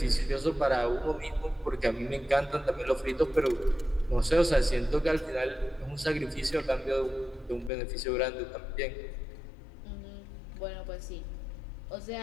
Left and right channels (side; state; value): right; drops out; at 7.7 s